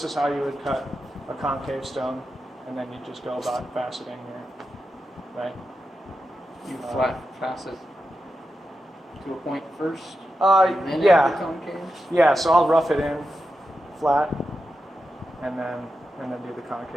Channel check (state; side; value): normal; both; correlation 0.89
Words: is how you would cut a concave stone, and then you just go about faceting here, right? You flat facet to a point first, and then add the Yeah, concave? yeah. So I'll rough it in flat, and then do the